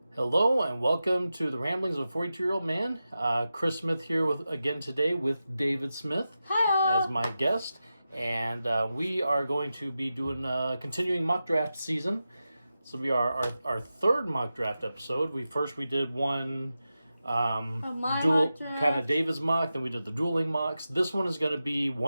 Hello and welcome to the Ramblings of a 42-Year-Old Man. Chris Smith here again today with David Smith as my guest. And we are going to be doing continuing mock draft season. This will be our third mock draft episode. We did one dual kind of David's mock, then we did the dueling mocks. This one is going to be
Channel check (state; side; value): inverted; both; correlation -0.92